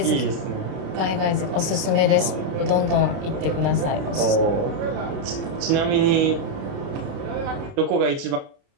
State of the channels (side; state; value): left; late; 29 ms